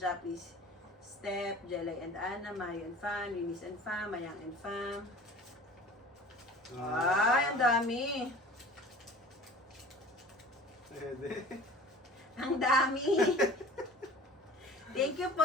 Step, Jelay and Anna, Mario and Fam, Eunice and Fam, Mayang and Fam. Ay, ang dami. Pwede. Ang dami. Thank you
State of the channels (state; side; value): normal; both; correlation 0.43